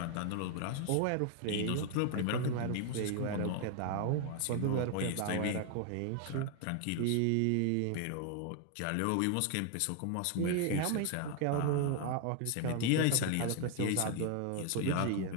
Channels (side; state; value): both; different; correlation 0.00